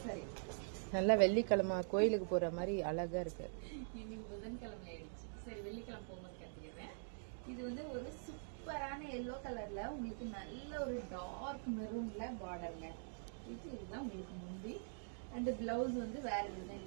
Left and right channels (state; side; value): silent; left; digital silence